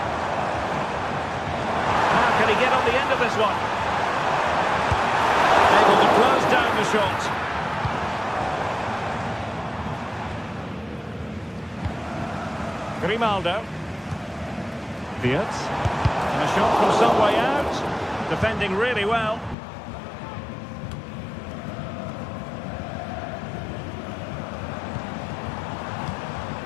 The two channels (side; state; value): right; drops out; at 19.6 s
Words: How can he get on the end of this one? Able to close down the shot. Grimaldo. Wirtz. And a shot from some way out. Defending really well.